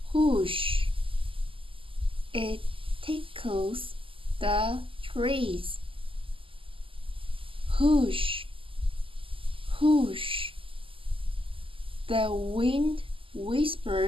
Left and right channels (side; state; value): left; late; 0.25 ms